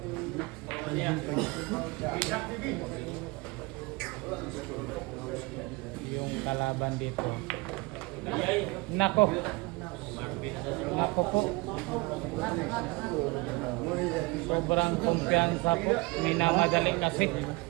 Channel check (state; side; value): quieter; left; 24.5 dB